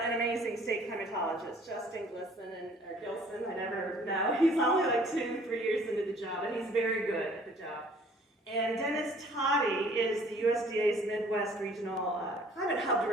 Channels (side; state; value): both; normal; correlation 0.55